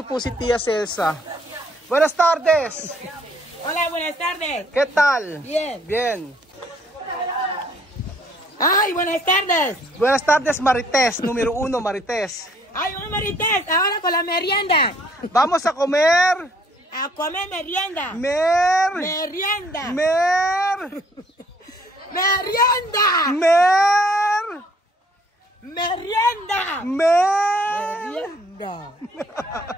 po si Tia Celsa. Buenas tardes. Hola, buenas tardes. ¿Qué tal? Bien. Bien. Ay, buenas tardes. Buenas tardes, Marites. Número 1, Marites. Ay, un Marites, ahora con la merienda. Vamos a comer. A comer merienda. Merienda.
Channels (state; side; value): normal; both; correlation 0.62